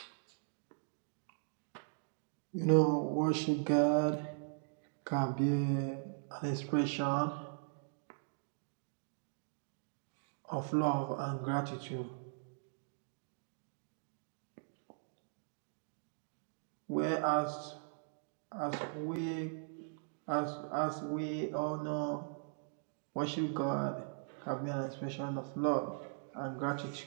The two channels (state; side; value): silent; left; digital silence